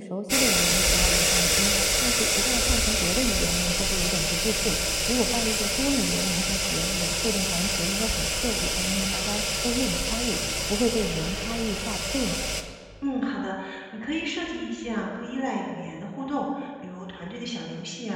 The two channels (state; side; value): identical; both; correlation 1.00